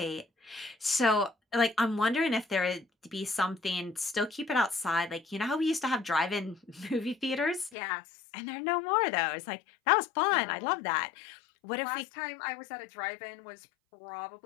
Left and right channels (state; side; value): drops out; right; at 7.7 s